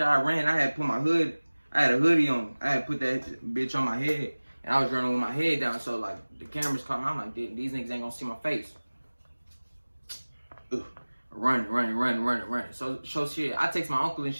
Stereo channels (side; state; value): both; inverted; correlation -1.00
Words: I ran, I had put my hood, I had a hoodie on. I had put that bitch on my head. And I was running with my head down. So like, the cameras caught me. I'm like, these niggas ain't gonna see my face. Ugh. Running. So shit, I text my uncle and